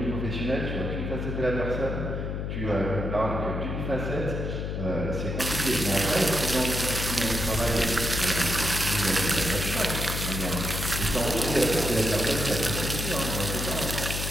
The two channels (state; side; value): noise; left; hum, 3 dB below the sound